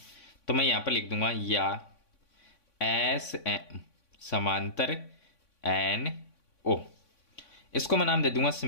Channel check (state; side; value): late; right; 3.5 ms